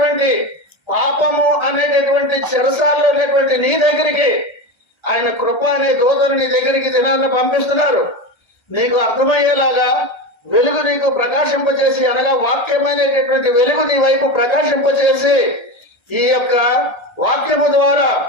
పాపము అనేటటువంటి చెరసాలలో ఉన్నటువంటి నీ దగ్గరికి ఆయన కృప అనే దూతను నీ దగ్గరికి దినాన్ని పంపిస్తున్నారు. నీకు అర్థమయ్యేలాగా వెలుగు నీకు ప్రకాశింపజేసి, అనగా వాక్యమైనటువంటి వెలుగు నీ వైపు ప్రకాశింపజేసి, ఈ యొక్క వాక్యము ద్వారా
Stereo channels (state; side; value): late; right; 1.3 ms